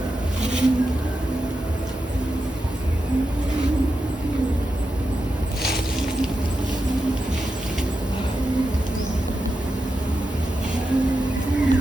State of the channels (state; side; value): normal; both; correlation 0.89